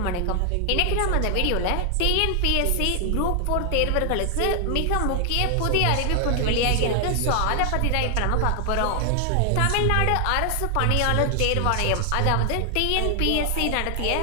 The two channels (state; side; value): different; both; correlation 0.00